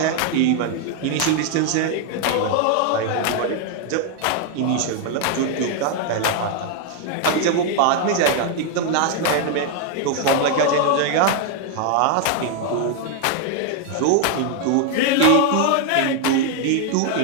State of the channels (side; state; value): both; different; correlation 0.01